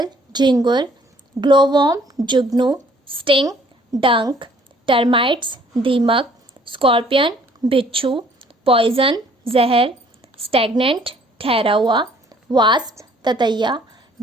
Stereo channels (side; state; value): both; normal; correlation 0.59